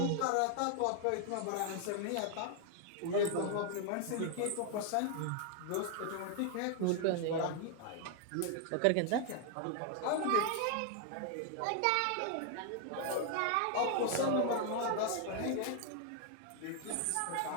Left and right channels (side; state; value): both; different; correlation 0.00